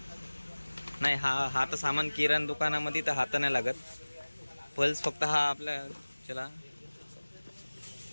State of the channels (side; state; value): both; inverted; correlation -1.00